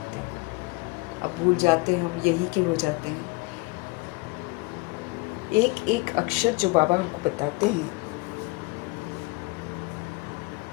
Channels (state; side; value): quieter; right; 25.0 dB